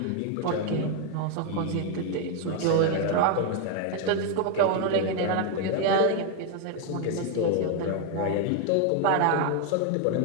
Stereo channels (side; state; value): both; different; correlation 0.01